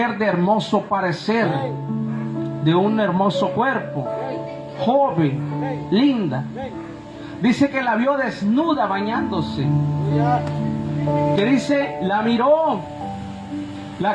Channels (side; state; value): both; identical; correlation 1.00